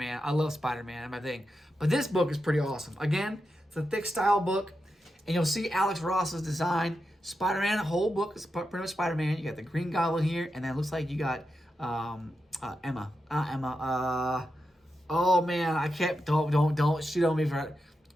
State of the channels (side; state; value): both; normal; correlation 0.88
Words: I love Spider-Man and my thing. But this book is pretty awesome. Again, it's a thick style book. And you'll see Alex Ross's design. Spider-Man, the whole book is pretty much Spider-Man. You got the Green Goblin here. And then it looks like you got Emma. Oh man, I can't. Don't shoot on me for.